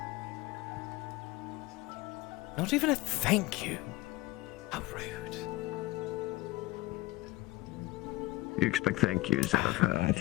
Not even a thank you. How rude. You expect thank yous out of her. I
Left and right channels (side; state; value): right; quieter; 19.6 dB